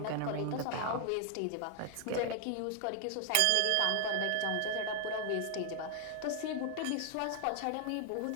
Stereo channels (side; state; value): both; different; correlation 0.00